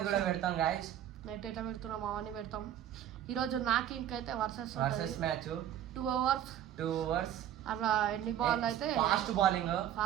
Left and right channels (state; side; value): quieter; left; 11.1 dB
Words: కూడా పెడతాం గాయస్. నెట్ ఎట్లా పెడుతున్నాం అవన్నీ పెడతాం. ఈరోజు నాకు ఇంకైతే వర్సెస్ మ్యాచ్ 2 అవర్స్ అట్లా ఎన్ని బాల్ అయితే ఫాస్ట్